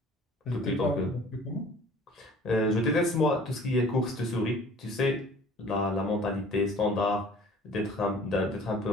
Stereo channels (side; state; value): both; normal; correlation 0.50